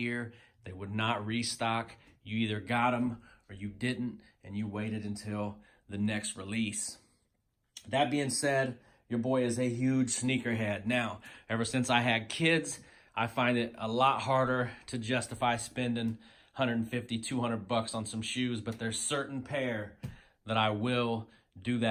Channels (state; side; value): identical; both; correlation 1.00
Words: They would not restock. You either got them or you didn't, and you waited until the next release. That being said, your boy is a huge sneakerhead. Now, ever since I had kids, I find it a lot harder to justify spending 150, 200 bucks on some shoes, but there's certain pair that I will do